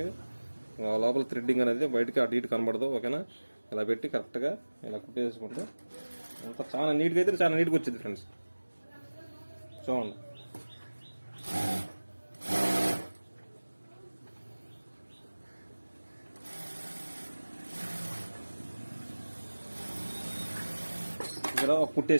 లోపల థ్రెడ్డింగ్ అనేది బయటకి అటు ఇటు కనబడదు. ఓకేనా, ఇలా పెట్టి కరెక్ట్గా ఇలా కుట్టేసుకుంటే అంత చాలా నీట్గా అయితే చాలా నీట్గా వచ్చింది ఫ్రెండ్స్. చూడండి ఇక్కడ ఒక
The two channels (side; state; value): both; inverted; correlation -1.00